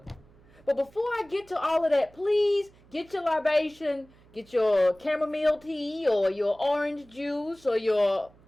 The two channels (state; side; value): noise; right; hum, 27 dB below the sound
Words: But before I get to all of that, please get your libation, get your chamomile tea or your orange juice or your